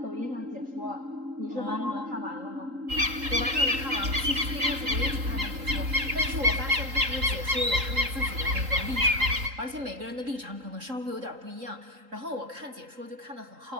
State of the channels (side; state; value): left; late; 3.8 ms